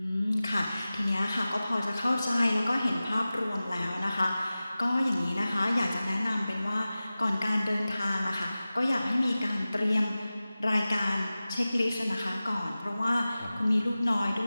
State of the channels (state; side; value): inverted; both; correlation -0.96